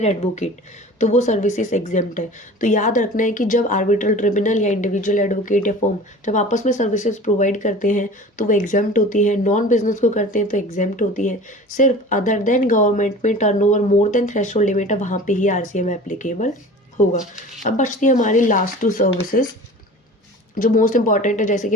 एडवोकेट, तो वो सर्विसेज एग्जेम्प्ट है। तो याद रखना है कि जब आर्बिट्रल ट्रिब्यूनल या इंडिविजुअल एडवोकेट या फॉर्म जब आपस में सर्विसेज प्रोवाइड करते हैं तो वो एग्जेम्प्ट होती है। नॉन बिजनेस को करते हैं तो एग्जेम्प्ट होती है। सिर्फ अदर देन गवर्नमेंट में turnover more than threshold limit है, वहाँ पे ही आरसीएम एप्लीकेबल होगा। अब बचती है हमारी लास्ट 2 सर्विसेज जो मोस्ट इंपॉर्टेंट है, जैसे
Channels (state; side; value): normal; both; correlation 0.40